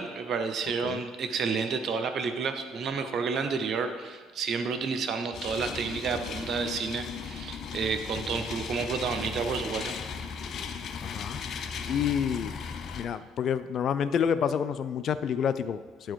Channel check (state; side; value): normal; both; correlation 0.62